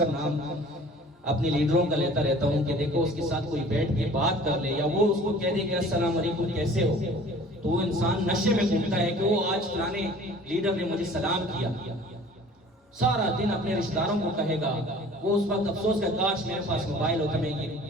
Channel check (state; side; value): normal; both; correlation 0.48